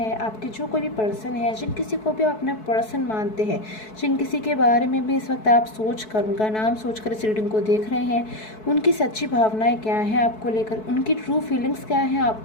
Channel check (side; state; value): right; late; 4.6 ms